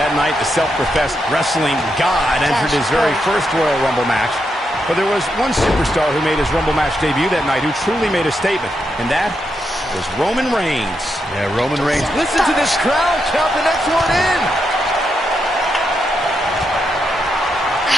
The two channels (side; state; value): both; normal; correlation 0.83